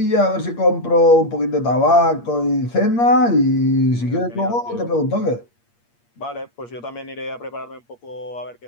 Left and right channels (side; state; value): right; late; 8.5 ms